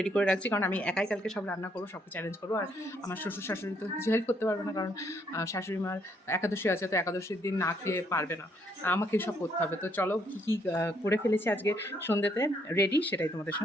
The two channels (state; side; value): normal; both; correlation 0.71